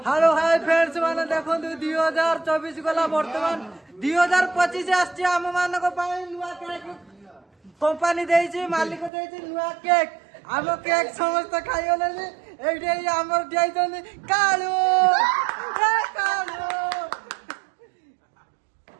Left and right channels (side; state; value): left; drops out; at 9.1 s